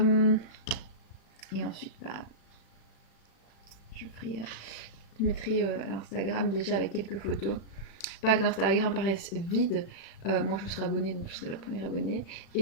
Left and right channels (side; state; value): right; late; 36 ms